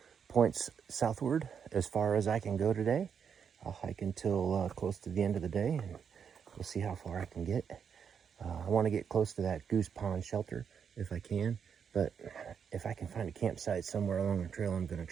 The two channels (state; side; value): quieter; left; 7.1 dB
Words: points southward as far as I can go today. I'll hike until close to the end of the day, and we'll see how far I can get. I want to get close to that Goose Pond shelter if I can, but if I can find a campsite somewhere along the trail, I'm going to